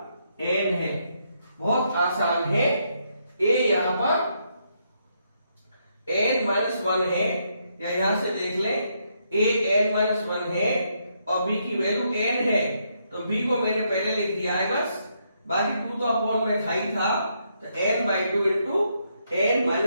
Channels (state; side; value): inverted; both; correlation -0.76